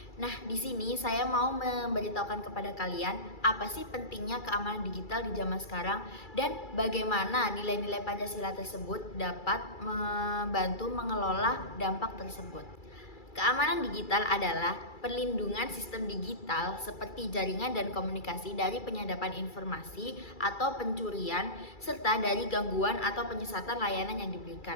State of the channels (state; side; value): late; right; 2.3 ms